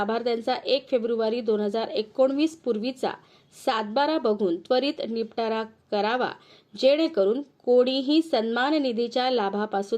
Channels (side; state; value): both; identical; correlation 1.00